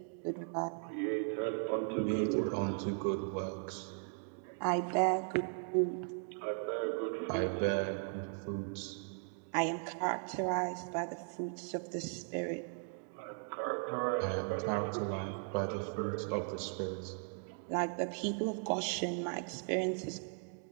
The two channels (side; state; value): left; silent; 53 dB below the other